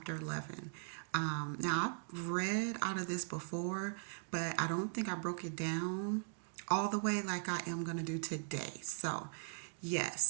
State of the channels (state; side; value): silent; left; digital silence